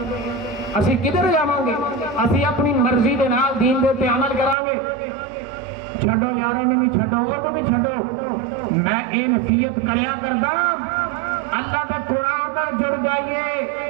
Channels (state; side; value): drops out; left; at 4.5 s